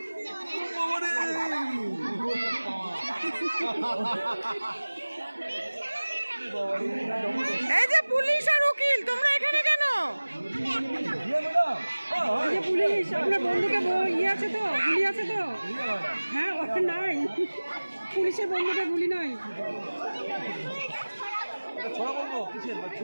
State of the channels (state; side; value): inverted; both; correlation -1.00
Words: এই যে পুলিশ আর উকিল তোমরা এখানে কেন? পুলিশ আপনার বন্ধুকে ইয়ে আছে তো, গুলি আছে তো? হ্যাঁ নাই, পুলিশের বন্ধুকে গুলি নাই। ছোড়া বলবো কিসের,